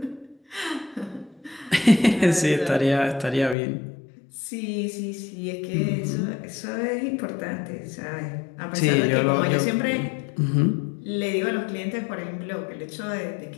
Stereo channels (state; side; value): drops out; right; at 3.6 s